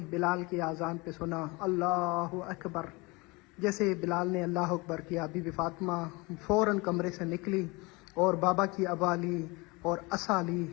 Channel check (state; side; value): quieter; right; 25.7 dB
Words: بلال کی اذان پہ سنا اللہ اکبر۔ جیسے بلال نے اللہ اکبر کیا، بی بی فاطمہ فوراً کمرے سے نکلی اور بابا کی عبا لی اور عصا لی،